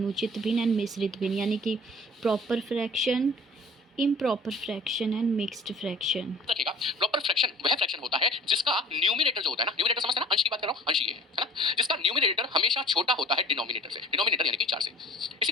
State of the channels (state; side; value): normal; both; correlation 0.46